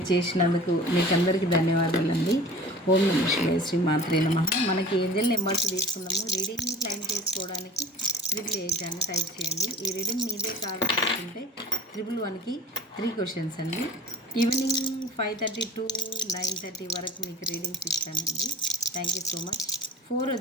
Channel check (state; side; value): normal; both; correlation 0.39